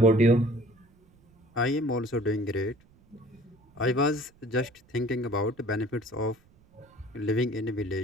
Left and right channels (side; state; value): right; noise; rumble, 30 dB below the sound